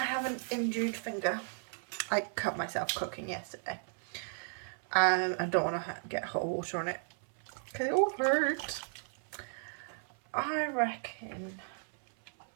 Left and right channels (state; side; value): silent; left; 55 dB below the other